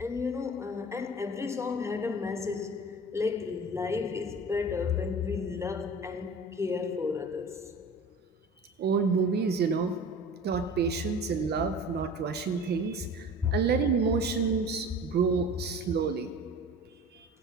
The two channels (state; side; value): normal; both; correlation 0.39